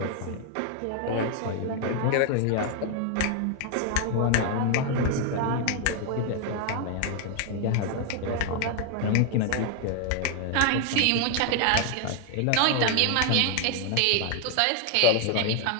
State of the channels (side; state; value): both; different; correlation 0.00